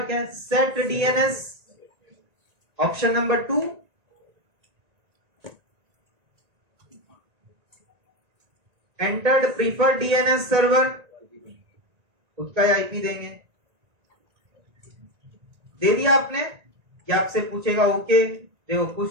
क्या है? Set DNS. Option number 2, entered preferred DNS server, उसका आईपी देंगे। दे दिया आपने। क्या आपसे पूछेगा? ओके, देखो कुछ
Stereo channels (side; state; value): left; late; 1.9 ms